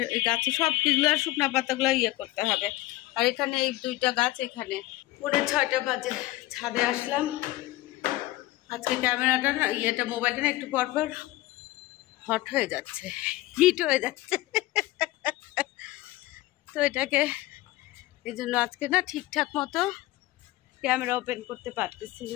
এই গাছে সব কিছুগুলো শুকনা পাতাগুলো করতে হবে। আর এখানে এই দুইটা গাছ, এখানে 6:30 বাজে ছাদে আসলাম। আজকে ক্যামেরাটা না মোবাইলটা না একটু পরপর হট হয়ে যাচ্ছে, হিট হয়ে যাচ্ছে। তো এটাকে এই জন্য আজকে না ঠিকঠাক মতো ক্যামেরা ওপেন করতে পারতেছি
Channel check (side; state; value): right; quieter; 17.8 dB